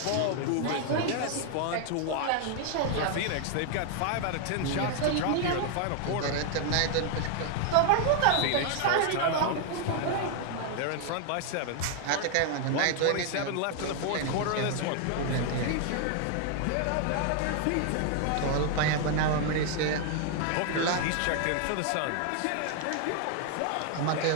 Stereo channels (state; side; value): different; both; correlation 0.00